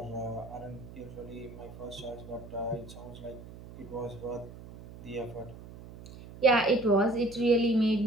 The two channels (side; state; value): right; noise; hum, 15 dB below the sound